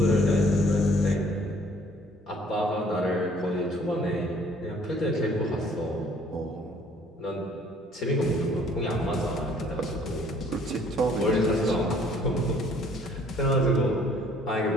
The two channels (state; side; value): normal; both; correlation 0.58